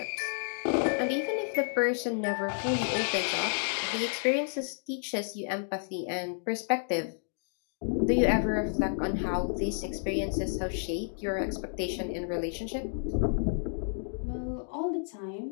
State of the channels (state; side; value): silent; right; digital silence